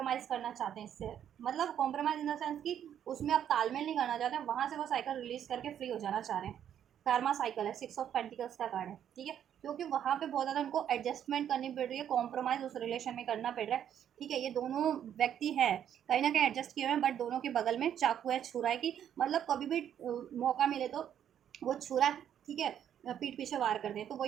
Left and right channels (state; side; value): quieter; left; 9.7 dB